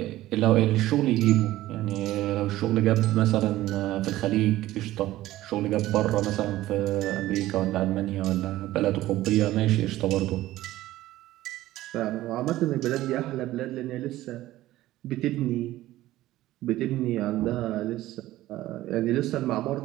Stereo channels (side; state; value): left; quieter; 15.7 dB